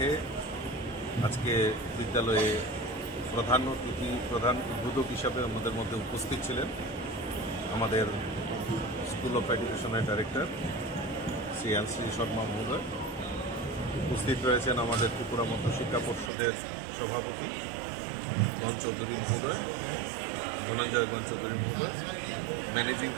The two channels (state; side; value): drops out; left; at 16.3 s